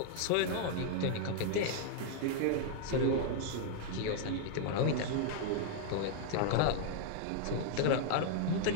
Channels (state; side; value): different; both; correlation 0.00